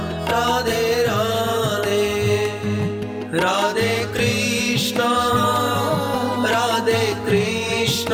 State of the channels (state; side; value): identical; both; correlation 1.00